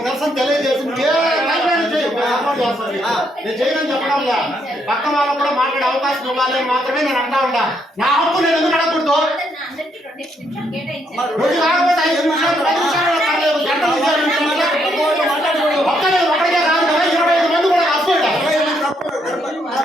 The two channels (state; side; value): normal; both; correlation 0.74